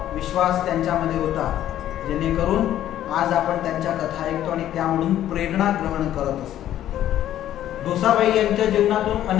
विश्वास त्यांच्यामध्ये होता, जेणेकरून आज आपण त्यांच्या कथा ऐकतो आणि त्यामधून प्रेरणा ग्रहण करत असतो. डोसाबाई यांच्या जीवनातून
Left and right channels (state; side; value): quieter; right; 12.0 dB